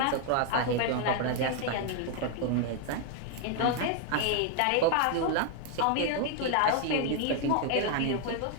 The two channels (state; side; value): different; both; correlation 0.00